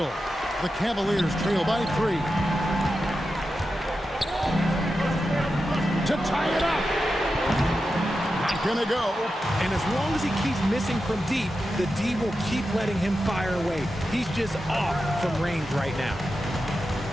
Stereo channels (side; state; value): both; normal; correlation 0.90